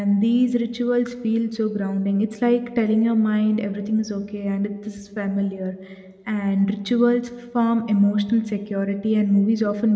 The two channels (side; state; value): both; identical; correlation 1.00